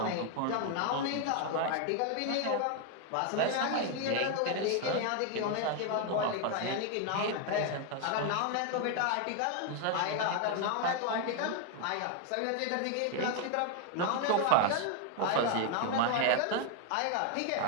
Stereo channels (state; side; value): different; both; correlation 0.01